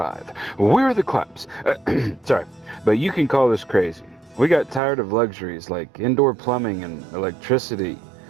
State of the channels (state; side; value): drops out; left; at 4.8 s